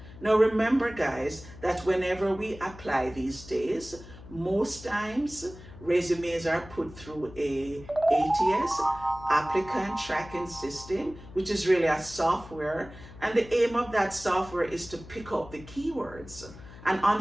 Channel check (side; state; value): left; noise; hum, 17 dB below the sound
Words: Now remember guys, that whenever we apply these days, most times resumes are put through a ATS, applicant tracking system, which is really a software, and the aim of that software is to pick up the keywords. And